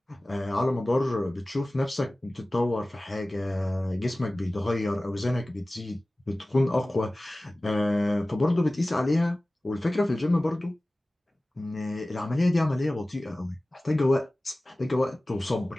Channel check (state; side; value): normal; both; correlation 0.97